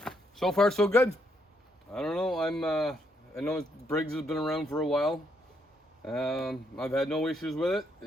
So far so good. I don't know, I know Briggs has been around for a while. I've had no issues with it.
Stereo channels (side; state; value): both; normal; correlation 0.74